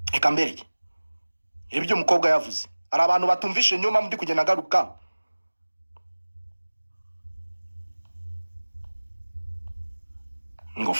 ikambereke ibyo umukobwa yavuze ari abantu batumvishe nyuma muri kugenda garuka ngo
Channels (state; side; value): inverted; both; correlation -1.00